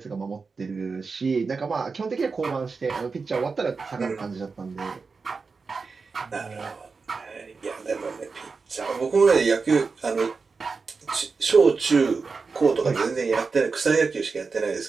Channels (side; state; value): left; quieter; 4.6 dB